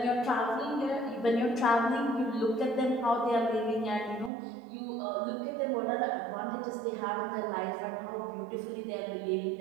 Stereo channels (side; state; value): left; drops out; at 4.3 s